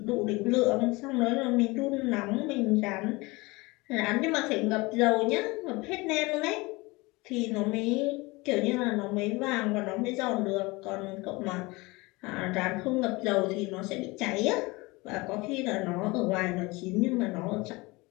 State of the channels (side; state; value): right; quieter; 23.6 dB